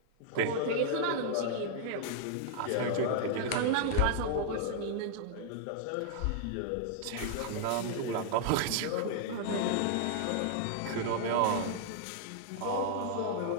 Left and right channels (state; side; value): different; both; correlation -0.01